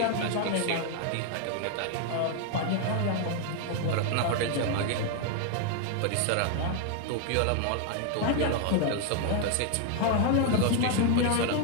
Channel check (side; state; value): both; different; correlation 0.01